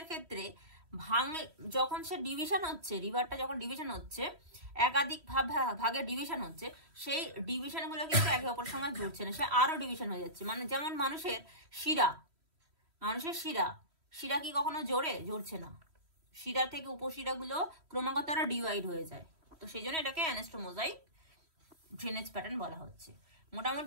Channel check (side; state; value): left; late; 3.1 ms